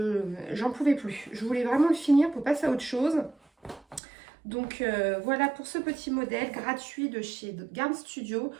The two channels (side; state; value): left; drops out; at 4.0 s